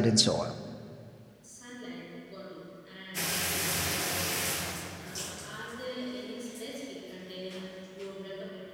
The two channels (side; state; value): both; identical; correlation 1.00